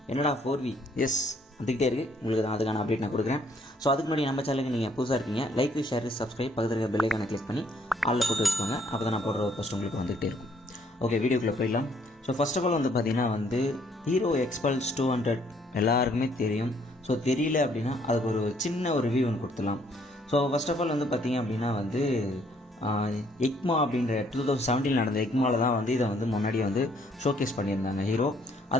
என்னடா 4V? எஸ், வந்துக்கிட்டே இருக்குது. உங்களுக்கு தான் அதுக்கான அப்டேட் நான் கொடுக்குறேன். ஸோ அதுக்கு முன்னாடி நம்ம சேனலுக்கு நீங்கள் புதுசாக இருக்கீங்க, லைக் ஷேர் சப்ஸ்கிரைப் பக்கத்தில் இருக்க பெல் ஐக்கானை கிளிக் பண்ணி ஆளில் போட்டு வச்சுக்கோங்க. அப்போ தான் நான் போடுற ஒரு ஃபஸ்ட் உங்களுக்கு வந்துகிட்டே இருக்கும். ஓகே, வீடியோக்குள்ளே போயிடலாம். ஸோ ஃபர்ஸ்ட் ஆஃப் ஆல் பார்த்தீங்கன்னா ஹீரோ எக்ஸ்பல்ஸ் 200 எல்லாருக்குமே தெரியும். ஸோ தெரியல அப்படின்னா அதுக்கு ஒரு சின்ன ஒரு ரிவ்யூ ஒன்று கொடுத்துடலாம். ஸோ ஃபர்ஸ்ட் ஆஃப் ஆல் பார்த்தீங்க அப்படின்னா எக்மா அப்படின்ற 2017 நடந்த எக்மாவில் தான் இதை முன்னாடி ஷோகேஸ் பண்ணியிருந்தாங்க ஹீரோ.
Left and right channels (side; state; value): both; normal; correlation 0.66